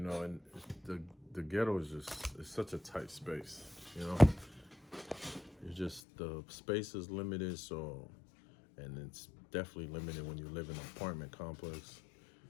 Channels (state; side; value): drops out; right; at 6.0 s